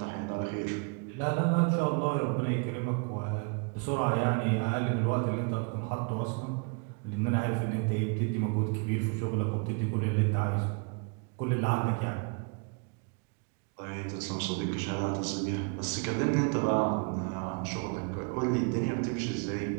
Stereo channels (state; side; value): quieter; left; 36.1 dB